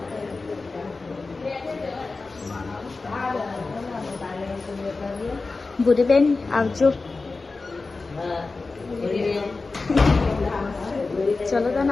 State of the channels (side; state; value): right; quieter; 3.8 dB